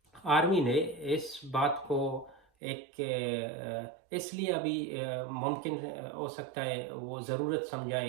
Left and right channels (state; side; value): drops out; left; at 2.4 s